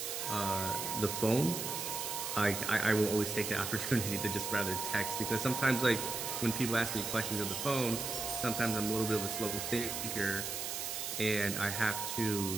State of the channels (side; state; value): right; noise; hiss, 4 dB below the sound